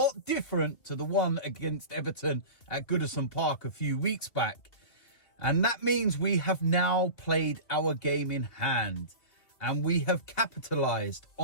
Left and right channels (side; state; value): right; late; 2.5 ms